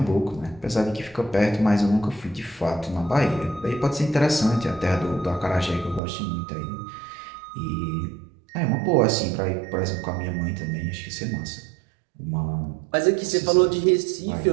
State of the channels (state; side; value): drops out; left; at 6.0 s